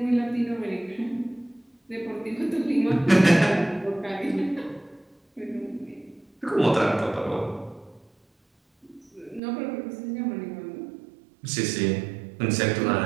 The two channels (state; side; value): drops out; left; at 9.4 s